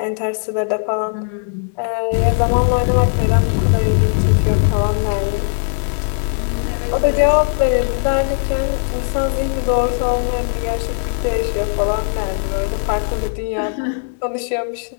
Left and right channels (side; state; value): right; silent; 67 dB below the other